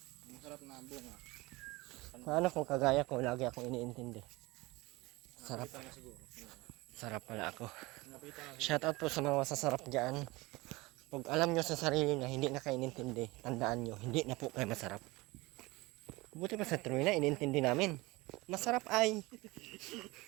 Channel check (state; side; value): quieter; left; 22.1 dB